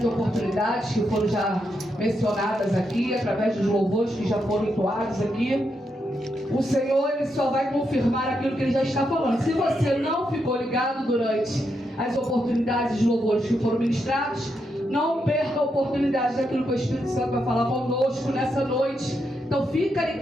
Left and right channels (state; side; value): normal; both; correlation 0.82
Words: oportunidades que foram já mencionadas aqui, através dos louvores que já foram entoados aqui. O Senhor, Ele só vai confirmar aquilo que Ele já está falando. Se você não ficou ligado durante as oportunidades de louvores que foram ministrados, não perca a oportunidade daquilo que o Espírito Santo vai falar conosco nessa noite. Então fica